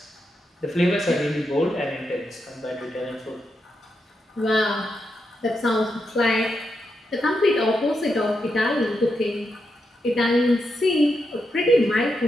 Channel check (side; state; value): both; normal; correlation 0.84